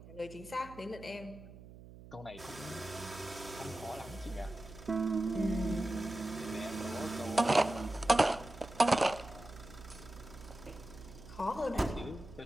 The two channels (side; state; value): right; noise; hum, 17 dB below the sound